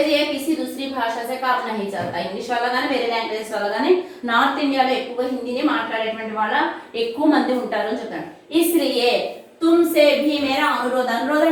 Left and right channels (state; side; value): identical; both; correlation 1.00